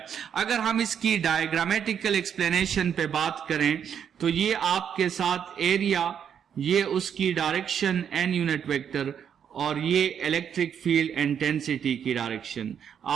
अगर हम इसकी डायग्रामेटिकल एक्सप्लेनेशन पे बात करें तो ये आपके साथ एरिया, ये उसकी डायरेक्शन n यूनिट वेक्टर और ये इलेक्ट्रिक फील्ड इंटेंसिटी की डायरेक्शन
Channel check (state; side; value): quieter; left; 8.2 dB